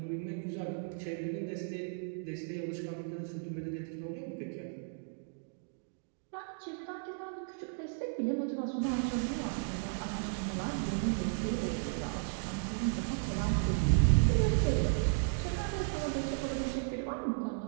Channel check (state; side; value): silent; left; digital silence